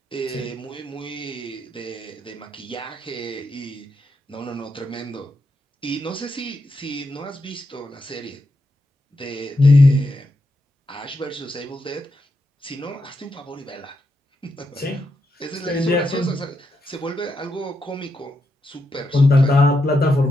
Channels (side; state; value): both; normal; correlation 0.83